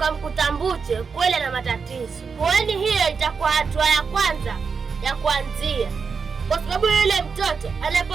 Mbuche kweli na matatizo, kwani hiyo itakuwa hatua ya kwanza ya kuanzia, kwa sababu yule mtoto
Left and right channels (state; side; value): quieter; left; 5.4 dB